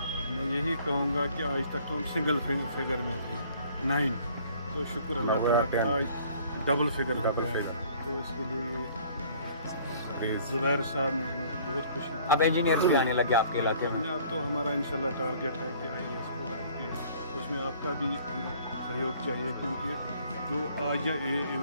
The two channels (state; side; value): inverted; both; correlation -0.55